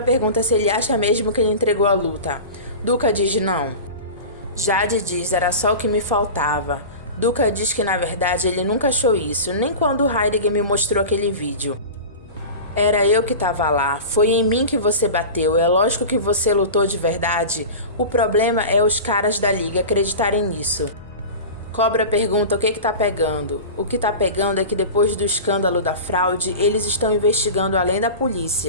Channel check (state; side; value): inverted; both; correlation -0.31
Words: pergunta se ele acha mesmo que ele entregou a luta. Duca diz não. Jade diz era só o que me faltava. Duca diz que na verdade ele nunca achou isso, nem quando Heidegger me mostrou aquele vídeo. Era eu que estava lá, foi em mim que você bateu, é lógico que você lutou de verdade. O problema é os caras da liga acreditarem nisso. Cobra pergunta o que tá pegando. O que tá pegando é que depois do escândalo da fraude, eles estão investigando além da